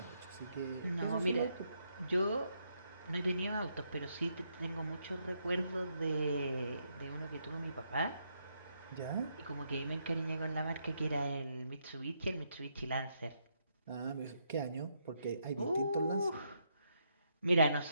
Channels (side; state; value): both; inverted; correlation -0.77